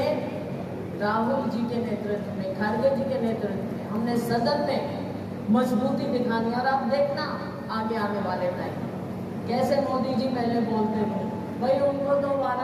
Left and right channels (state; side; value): identical; both; correlation 1.00